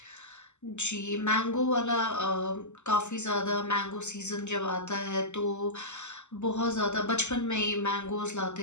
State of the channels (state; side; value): late; right; 0.83 ms